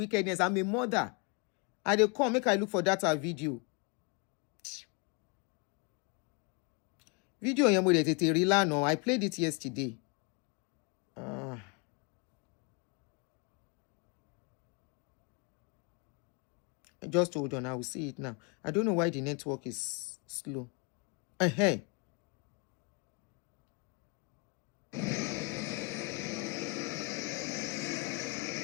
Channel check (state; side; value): quieter; right; 28.9 dB